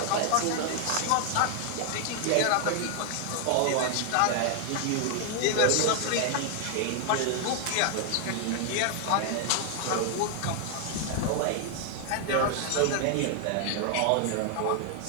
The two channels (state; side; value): different; both; correlation 0.00